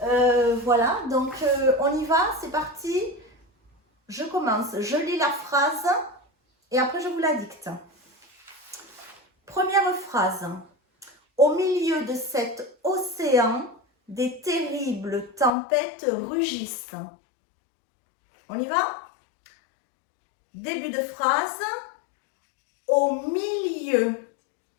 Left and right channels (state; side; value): drops out; right; at 15.5 s